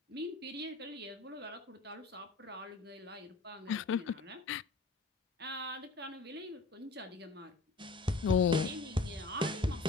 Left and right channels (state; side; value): quieter; right; 3.6 dB